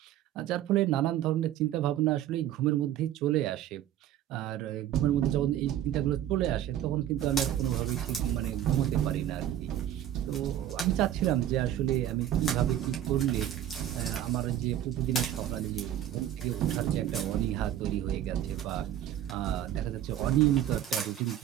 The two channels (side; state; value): left; quieter; 11.6 dB